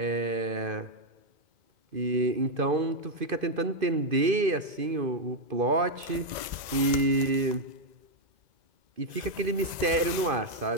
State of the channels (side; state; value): left; late; 2.0 ms